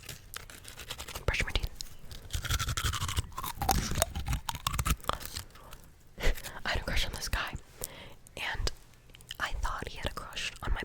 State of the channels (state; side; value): identical; both; correlation 1.00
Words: brush my teeth. I had a crush on this guy, and I thought he had a crush on my